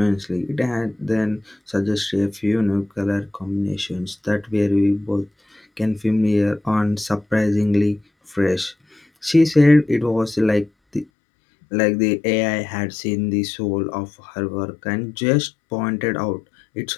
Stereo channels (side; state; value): right; drops out; at 11.1 s